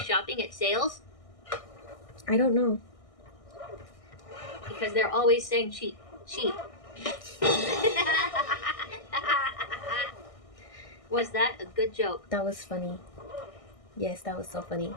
at sales? I don't know. Because they're always saying cheap, cheap. Was that a good joke? That was funny. Yes, that was so funny.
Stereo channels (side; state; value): right; late; 1.6 ms